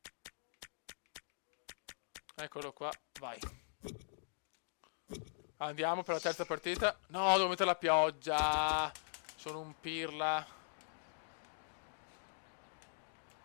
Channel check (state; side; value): silent; right; digital silence